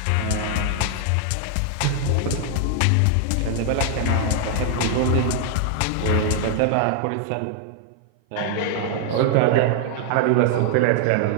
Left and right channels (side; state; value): both; different; correlation 0.00